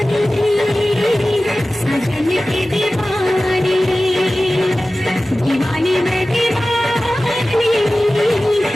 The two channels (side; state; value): both; normal; correlation 0.96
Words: सजन की दीवानी दीवानी में दीवानी